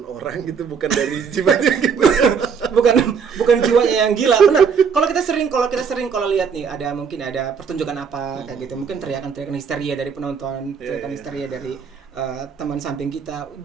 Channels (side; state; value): left; quieter; 6.3 dB